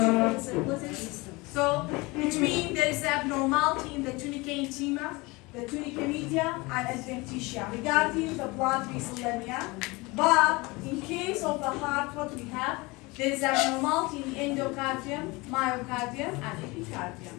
of the circulatory system. So it means there is abnormality in the tunica intima, the tunica media, and adventitia regarding the blood vessel lamina. But in case of the heart, what we have, there is abnormality in endocardium, myocardium, and epicardium.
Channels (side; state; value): right; quieter; 24.2 dB